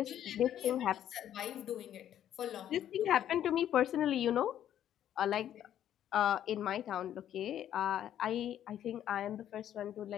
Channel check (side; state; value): right; quieter; 10.8 dB